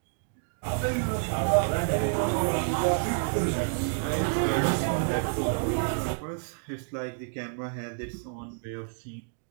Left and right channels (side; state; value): left; silent; digital silence